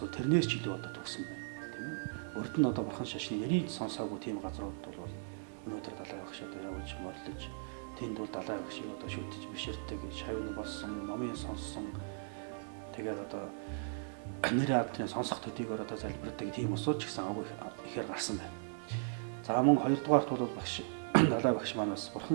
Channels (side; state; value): left; silent; digital silence